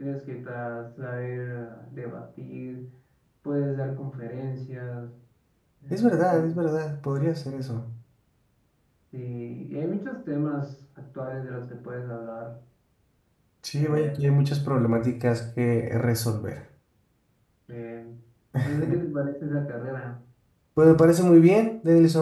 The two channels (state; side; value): identical; both; correlation 1.00